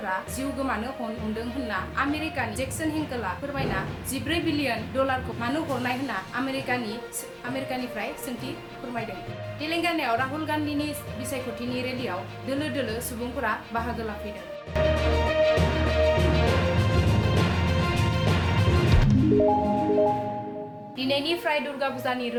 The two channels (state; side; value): identical; both; correlation 1.00